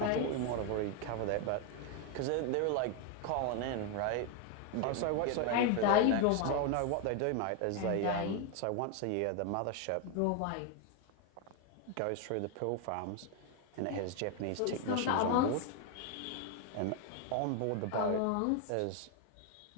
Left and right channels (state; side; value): different; both; correlation 0.01